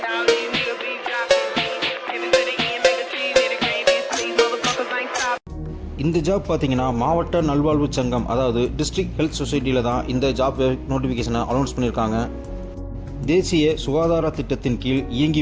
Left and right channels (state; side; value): identical; both; correlation 1.00